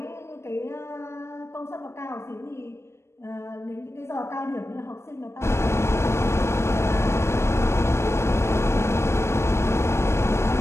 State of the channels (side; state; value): right; late; 0.13 ms